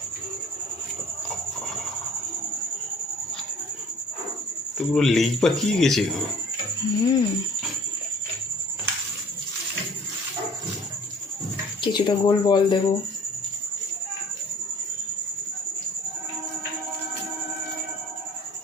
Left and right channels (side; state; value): both; normal; correlation 0.53